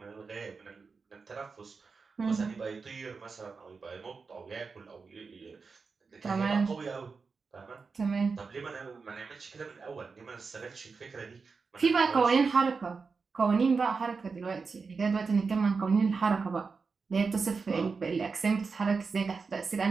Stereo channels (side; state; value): left; quieter; 4.8 dB